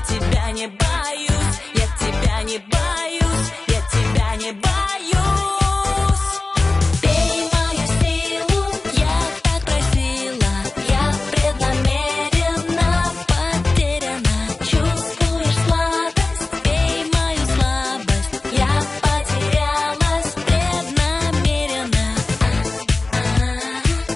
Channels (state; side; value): quieter; right; 3.3 dB